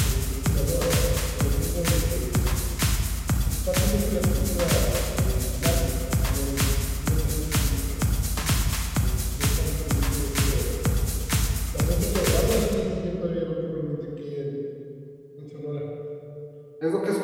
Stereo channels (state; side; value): identical; both; correlation 1.00